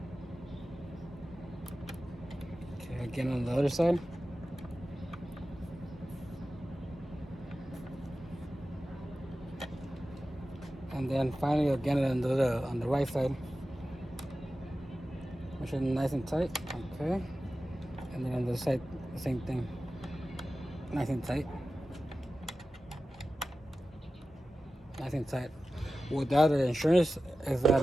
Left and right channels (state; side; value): normal; both; correlation 0.94